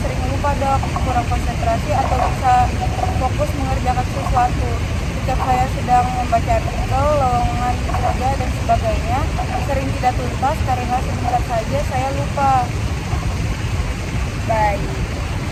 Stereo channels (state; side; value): identical; both; correlation 1.00